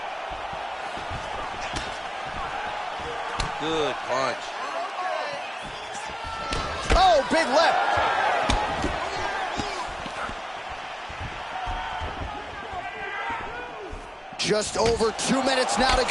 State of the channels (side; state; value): both; identical; correlation 1.00